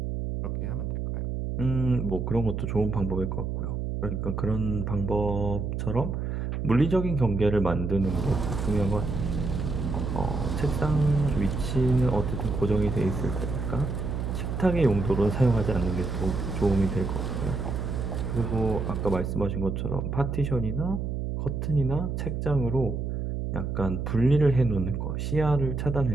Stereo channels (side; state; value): right; noise; hum, 3 dB below the sound